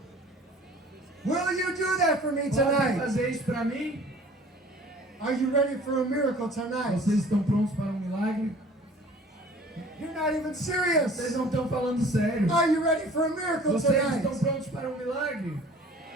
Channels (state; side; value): normal; both; correlation 0.48